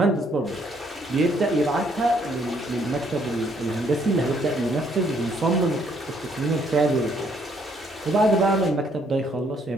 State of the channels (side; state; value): both; normal; correlation 0.68